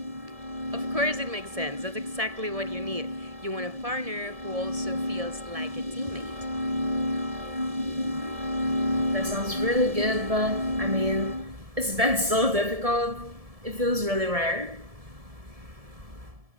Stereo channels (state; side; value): late; left; 1.7 ms